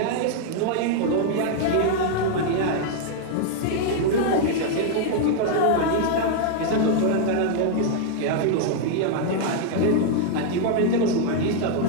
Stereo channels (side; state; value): both; different; correlation 0.00